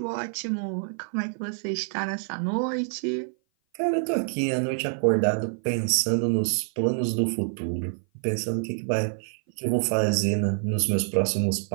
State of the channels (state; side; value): silent; left; 57 dB below the other